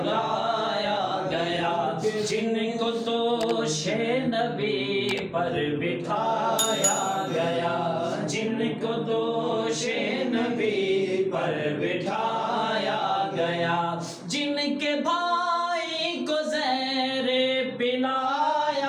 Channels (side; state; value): both; identical; correlation 1.00